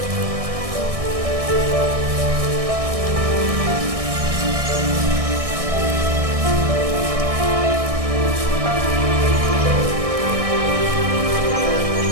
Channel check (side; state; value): left; late; 1.6 ms